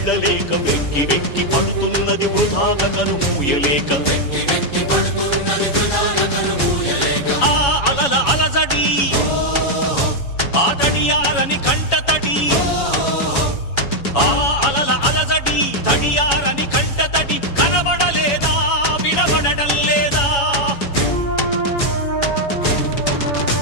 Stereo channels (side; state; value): right; late; 7.1 ms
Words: వెక్కి వెక్కి పడుతున్నది వృధాగా కనుమూయలేక ఆ అలల అలజడి ఆ తడియారని కంటతడి ఆ అలల అలజడి తడియారని కంటతడి కనబడలేదా వినబడటం లేదా